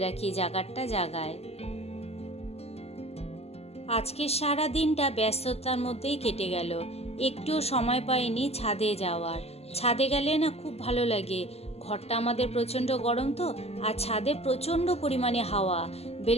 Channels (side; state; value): right; late; 0.30 ms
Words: রাখি জায়গাটা জায়গায়। আজকের সারা দিনটা ব্যস্ততার মধ্যেই কেটে গেল, একটুও সময় পাইনি ছাদে যাওয়ার। ছাদে গেলে না খুব ভালো লাগে, ঘরটা আমাদের প্রচণ্ড গরম তো, আর ছাদে প্রচণ্ড পরিমাণে হাওয়া।